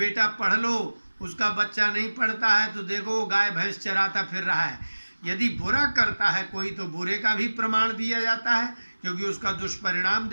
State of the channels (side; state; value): both; inverted; correlation -1.00